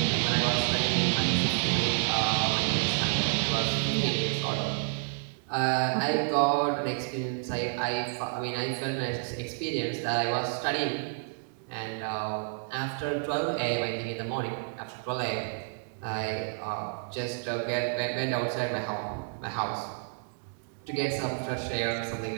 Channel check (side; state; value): left; silent; digital silence